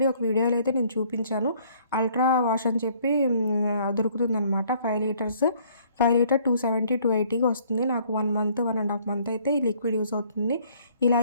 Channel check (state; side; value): inverted; both; correlation -0.61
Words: ఒక వీడియోలో అయితే నేను చూపించాను. అల్ట్రా వాష్ అని చెప్పి దొరుకుతుందనమాట. 5 లీటర్స్ 5 లీటర్ 270, 280కి వస్తుంది. నాకు 1 మంత్, 1 ½ మంత్ అయితే ఈ లిక్విడ్ యూజ్ అవుతుంది. ఇలా